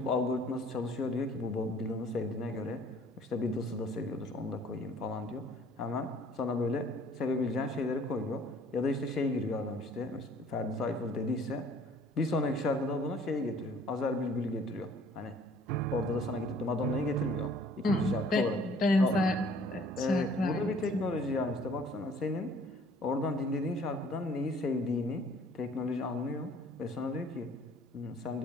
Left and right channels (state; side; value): normal; both; correlation 0.56